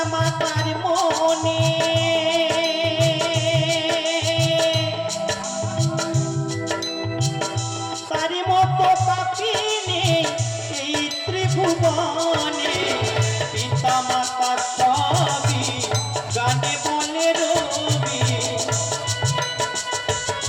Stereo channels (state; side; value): identical; both; correlation 1.00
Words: মাতার মনে, তার মতো পাপী নেই এই ত্রিভুবনে। পিতা মাতার সবই গানে বলে রবি,